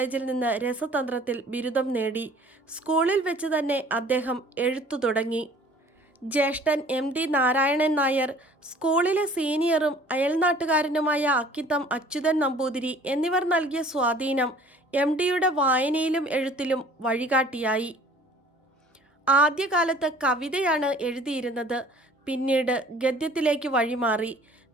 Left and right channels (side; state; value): both; normal; correlation 0.51